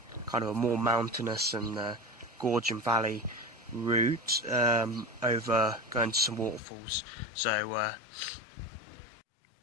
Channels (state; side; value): drops out; right; at 6.6 s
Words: kind of a more mountainous and gorge and valley route over going to some waterfalls. So